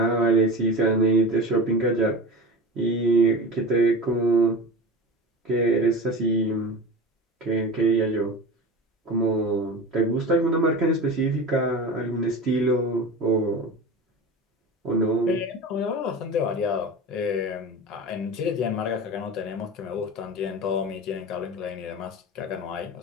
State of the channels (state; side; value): normal; both; correlation 0.30